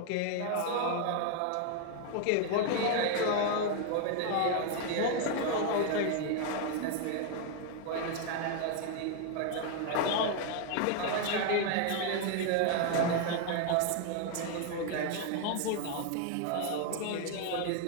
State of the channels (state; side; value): different; both; correlation 0.01